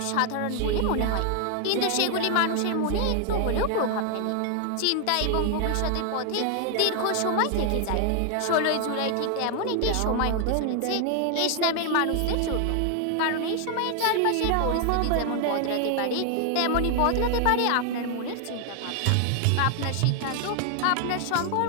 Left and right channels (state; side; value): different; both; correlation 0.00